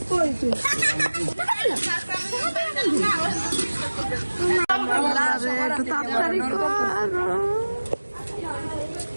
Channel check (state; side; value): inverted; both; correlation -1.00